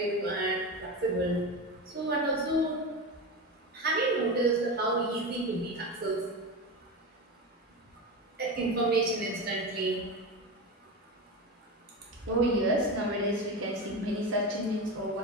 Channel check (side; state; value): both; normal; correlation 0.22